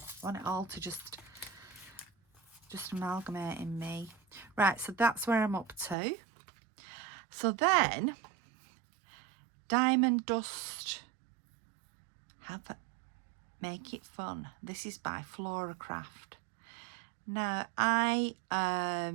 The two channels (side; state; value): left; drops out; at 6.0 s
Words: I want it all to just amalgamate in me. Right, so that's where I'm up to. So then, Diamond Dust, Make It Fun. This is by Flora Craft. Now, I